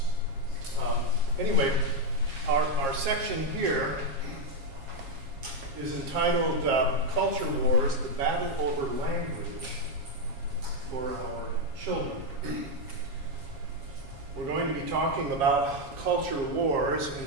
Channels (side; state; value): left; late; 7.4 ms